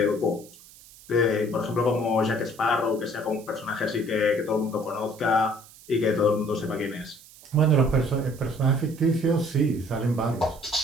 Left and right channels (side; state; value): right; noise; hiss, 22 dB below the sound